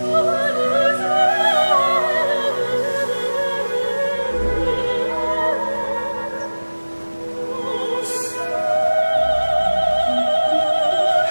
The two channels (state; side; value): inverted; both; correlation -1.00